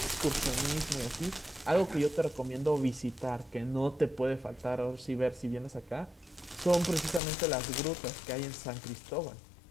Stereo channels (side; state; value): right; drops out; at 7.2 s